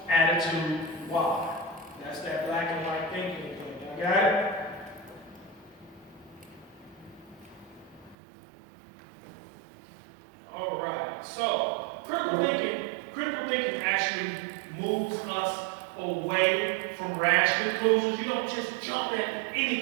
attitude Y. That's that black and white thinking thing. You got it? All right. So critical thinking actually moves us away from rash conclusions. You don't just jump at any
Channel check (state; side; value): drops out; left; at 8.2 s